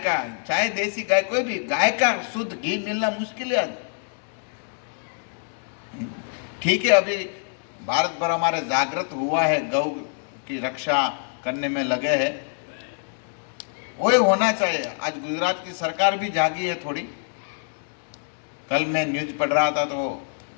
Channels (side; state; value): right; silent; digital silence